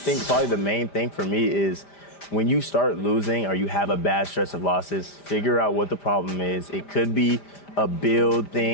probably the main thing for me is when you start losing or you have a bad stretch of losses, figure out what the problem is. It could be a build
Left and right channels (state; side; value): late; right; 5.0 ms